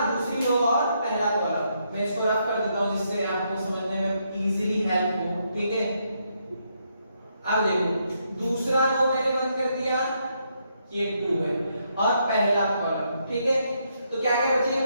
दूसरी रो और पहला कॉलम। मैं इसको रफ कर देता हूं जिससे आपको समझने में इजीली हेल्प हो, ठीक है। अब देखो दूसरा रो मैंने बंद कर दिया, ये 2 है और पहला कॉलम, ठीक है। तो क्या क्या बचे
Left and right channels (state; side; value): inverted; both; correlation -0.77